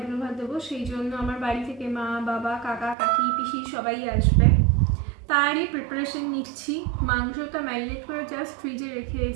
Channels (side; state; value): left; drops out; at 3.0 s